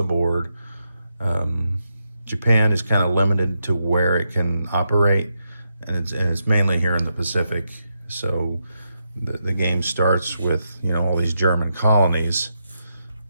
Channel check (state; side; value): inverted; both; correlation -0.84